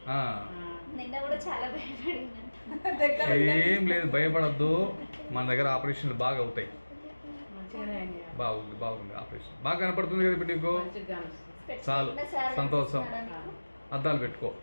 ఏం లేదు, భయపడద్దు. మన దగ్గర ఆపరేషన్లు బాగా అవుతాయి. బాగుంది బాగుంది, ఆపరేషన్ బాగా కనపడుతుంది కదా ఇప్పుడు నీకు. చాలు, సంతోషం. అద్దాలు పెట్టుకో,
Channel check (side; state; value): both; inverted; correlation -1.00